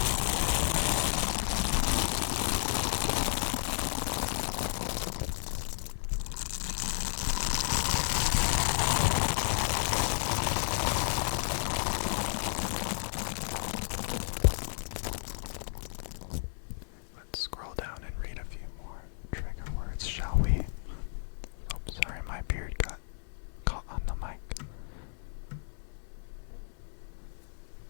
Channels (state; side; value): silent; right; digital silence